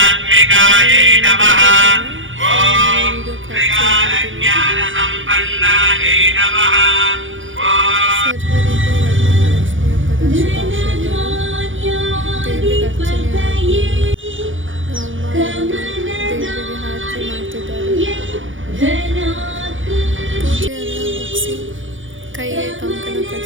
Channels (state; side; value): late; left; 0.57 ms